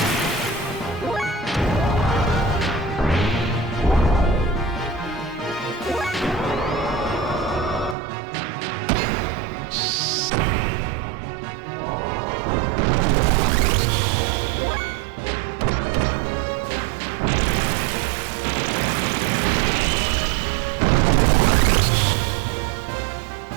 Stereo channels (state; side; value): drops out; left; at 8.0 s